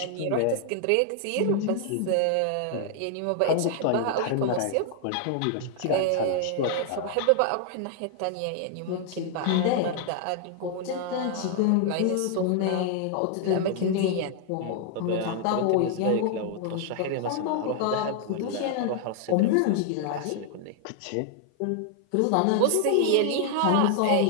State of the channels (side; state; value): both; different; correlation 0.00